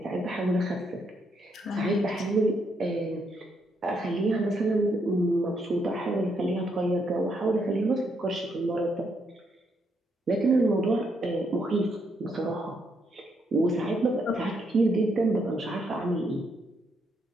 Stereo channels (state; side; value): normal; both; correlation 0.76